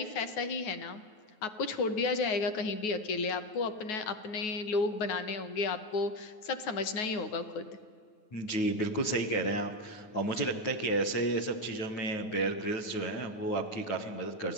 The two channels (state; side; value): late; right; 9.4 ms